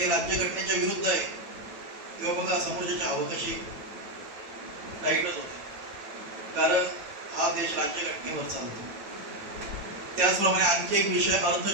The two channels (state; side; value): late; left; 8.6 ms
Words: राज्यघटनेच्या विरुद्ध आहे. तेव्हा बघा समोरच्याची हवा कशी टाईटच होते, कारण हा देश राज्यघटनेवर चालतो. त्याचप्रमाणे आणखी एक विषय